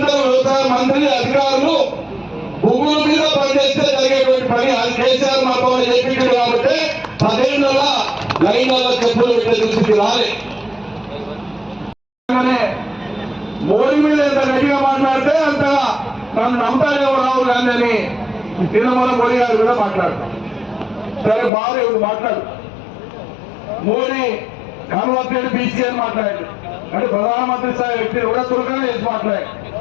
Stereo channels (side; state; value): right; drops out; at 21.5 s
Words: వ్యవసాయ మంత్రి అధికారులు భూముల మీద పనిచేస్తే జరిగేటువంటి పని. అది కేసీఆర్ మాతో చెప్పించాడు కాబట్టి 10 ఏళ్ళ లైన్లలో చెప్పులు పెట్టే దుస్థితి రాలే. మోడీ మీద ఎంత గట్టిగా మాట్లాడితే అంతగా నన్ను నమ్ముతారేమో రావు గాంధీ అని నిన్న మోడీ గారి మీద మాట్లాడతాం. సరే బాగా ఇప్పుడు మాట్లాడు. మోడీ కన్వర్టెడ్ బీసీ అని మాట్లాడాడు. అంటే ప్రధానమంత్రి స్థాయి వ్యక్తి కూడా చురుకనే చేసి మాట్లాడాడు.